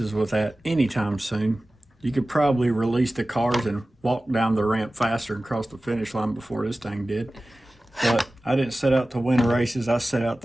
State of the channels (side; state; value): both; normal; correlation 0.97